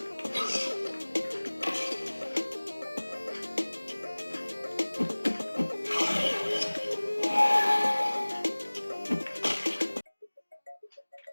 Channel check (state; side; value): inverted; both; correlation -1.00